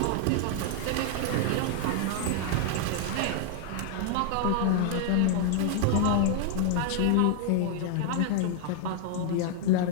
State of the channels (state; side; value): different; both; correlation 0.00